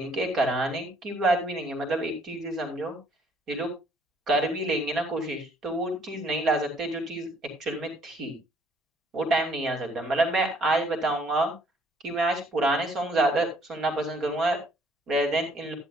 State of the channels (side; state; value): both; normal; correlation 0.63